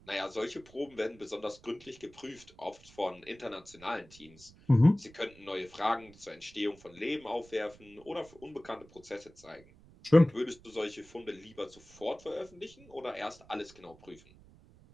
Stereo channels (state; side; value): noise; right; rumble, 24 dB below the sound